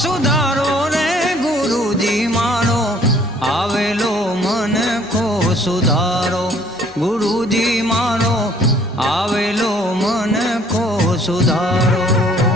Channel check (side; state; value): both; normal; correlation 0.59